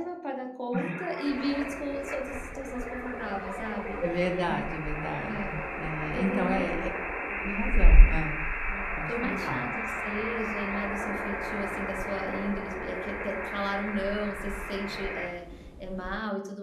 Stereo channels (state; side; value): identical; both; correlation 1.00